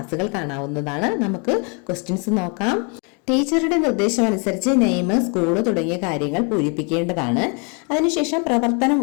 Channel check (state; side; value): quieter; right; 34.3 dB